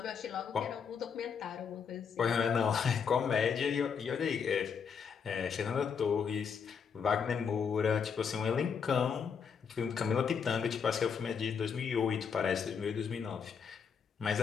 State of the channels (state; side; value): quieter; right; 6.5 dB